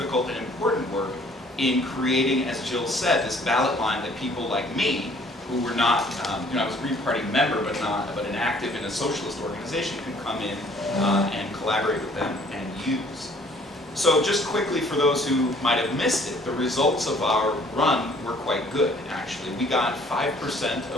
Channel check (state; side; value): normal; both; correlation 0.57